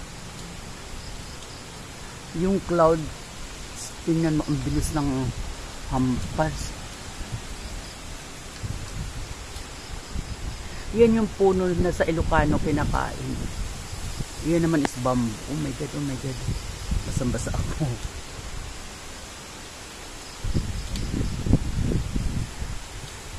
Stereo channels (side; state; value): both; identical; correlation 1.00